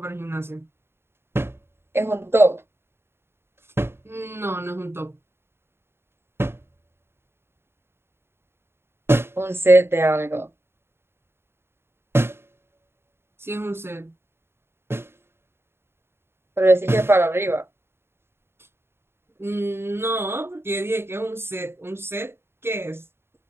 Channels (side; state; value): left; late; 0.12 ms